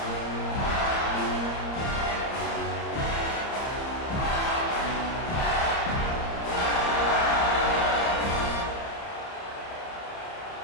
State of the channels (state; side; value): late; right; 30 ms